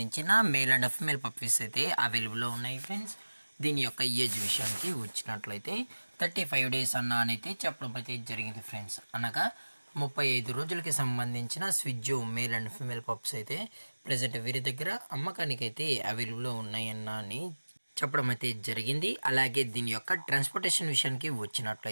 మేల్ అండ్ ఫీమేల్ పప్పీస్ అయితే అవైలబుల్లో ఉన్నాయి ఫ్రెండ్స్. దీని యొక్క ఏజ్ విషయానికి వచ్చినట్లయితే 35 డేస్ అయితే చెప్పడం అయితే జరిగింది ఫ్రెండ్స్. అనగా 35 రోజులకి సంబంధించిన స్విజ్జు మేల్ అండ్ ఫీమేల్ పప్స్ అయితే ప్రజెంట్ వీరి దగ్గర అమ్మకానికి అయితే అవైలబుల్లో ఉన్నాయని చెప్పడం అయితే జరిగింది. అలాగే దీని యొక్క ట్రాన్స్పోర్టేషన్ విషయానికి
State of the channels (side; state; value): both; inverted; correlation -1.00